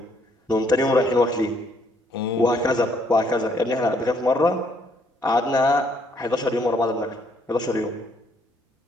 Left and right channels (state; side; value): normal; both; correlation 0.68